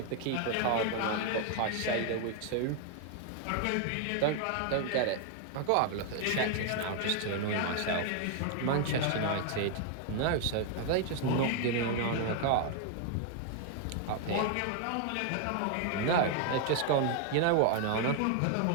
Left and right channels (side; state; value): both; different; correlation 0.00